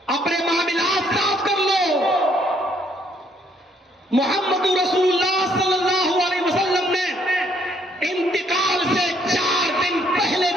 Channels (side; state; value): both; normal; correlation 0.68